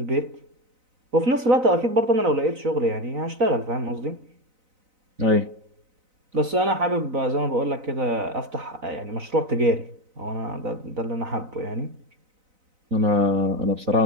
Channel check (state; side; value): late; left; 4.0 ms